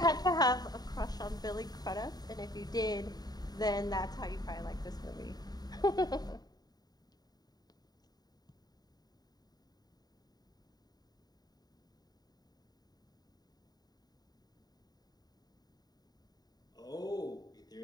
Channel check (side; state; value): right; late; 0.19 ms